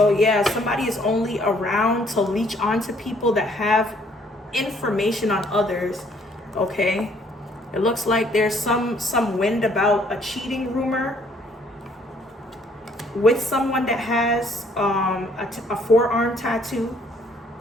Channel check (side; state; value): both; normal; correlation 0.63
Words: yeah, somebody is only around to leech onto people that have information on others. Okay, it looks like there's some wind about a cheating rumor with someone that has a forearm tattoo.